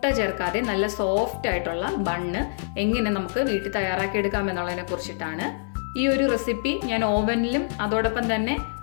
ചേർക്കാതെ നല്ല സോഫ്റ്റ് ആയിട്ടുള്ള ബണ്ണ് എങ്ങനെ നമുക്ക് വീട്ടിൽ തയ്യാറാക്കി എടുക്കാം എന്നുള്ളതിനെ കുറിച്ചിട്ടാണ്. ഈ ഒരു റെസിപ്പി ഞാൻ ഓവനിലും അതോടൊപ്പം തന്നെ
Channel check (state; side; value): silent; right; digital silence